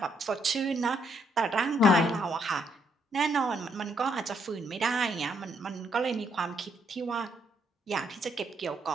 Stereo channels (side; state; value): both; normal; correlation 0.73